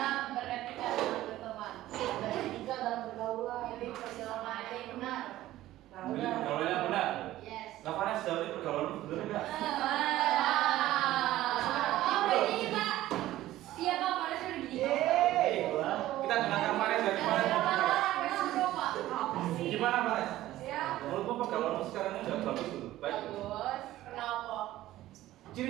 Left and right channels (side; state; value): left; quieter; 15.0 dB